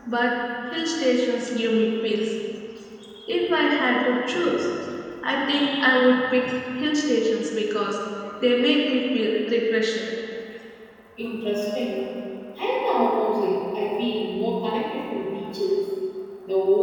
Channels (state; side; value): identical; both; correlation 1.00